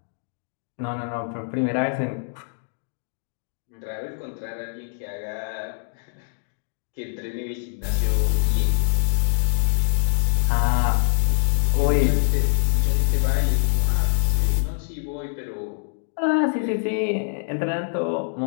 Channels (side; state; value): right; silent; digital silence